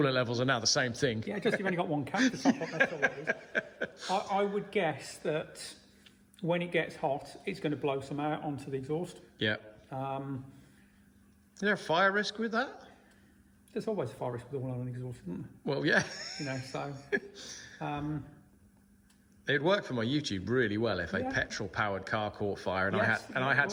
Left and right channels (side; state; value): both; identical; correlation 1.00